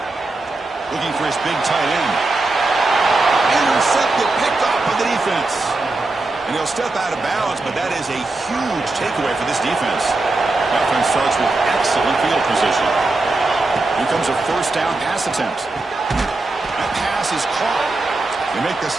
Looking for his big tight end. Intercepted, picked off by the defense. And he'll step out of bounds, but that is a huge takeaway for this defense. Offense starts with excellent field position. Here comes a 1st down pass attempt. That pass is caught. They make the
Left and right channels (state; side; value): quieter; left; 3.2 dB